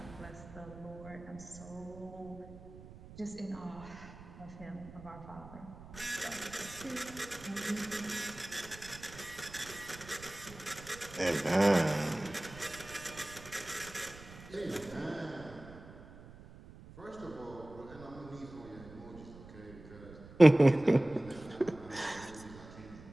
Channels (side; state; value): right; noise; rumble, 17 dB below the sound